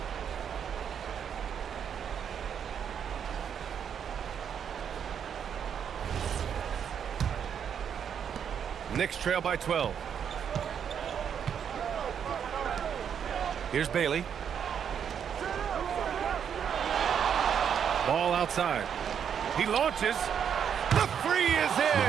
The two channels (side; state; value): left; quieter; 8.0 dB